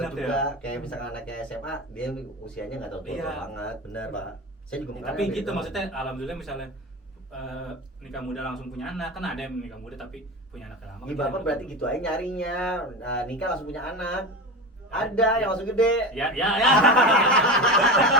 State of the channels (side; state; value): both; normal; correlation 0.26